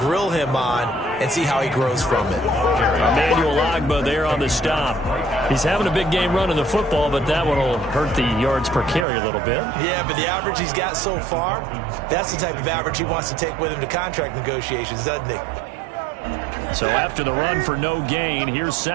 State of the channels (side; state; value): left; drops out; at 9.1 s